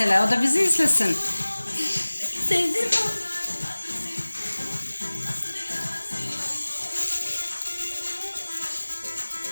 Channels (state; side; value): inverted; both; correlation -1.00